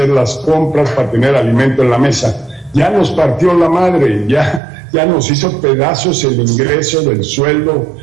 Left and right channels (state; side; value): drops out; left; at 4.6 s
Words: las compras, para tener alimento en la mesa. Ya nos partió la madre, ya nos hizo pedazos el ingreso del sueldo